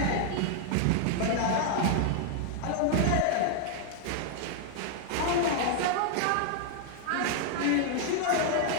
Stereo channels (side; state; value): both; different; correlation 0.00